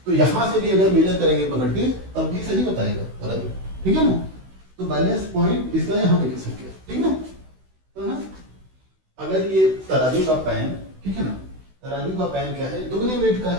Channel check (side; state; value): left; late; 16 ms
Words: तो यहाँ से भी अगर मेजर करेंगे पकड़ के तब भी सही बताएगा तराजू, ठीक है ना। तो बैलेंस पॉइंट इसका यहाँ पे लिख सकते हैं, ठीक है ना। तो ना अगर ये तराजू का पैन, ठीक है ना, तराजू का पैन क्या है, दुगने वेट का